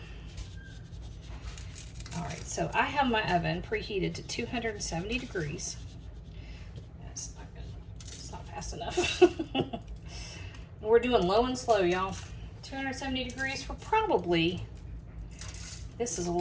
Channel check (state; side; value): identical; both; correlation 1.00